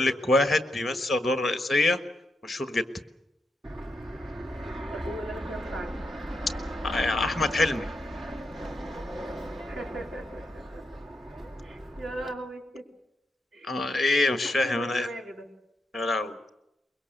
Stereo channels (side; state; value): both; normal; correlation 0.83